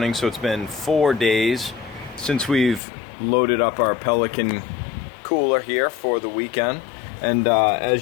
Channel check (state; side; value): drops out; right; at 2.8 s